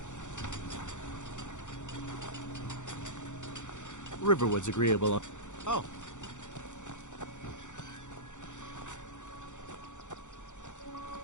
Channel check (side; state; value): right; late; 0.85 ms